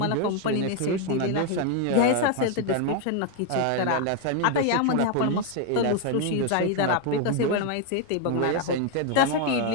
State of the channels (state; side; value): different; both; correlation 0.01